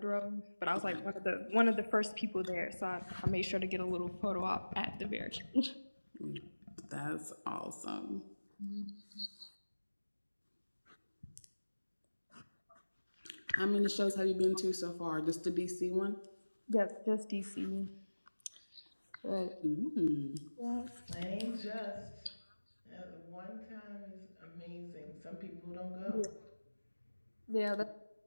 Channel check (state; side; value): inverted; both; correlation -1.00